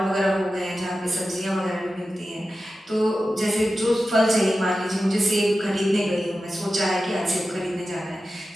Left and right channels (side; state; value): both; normal; correlation 0.93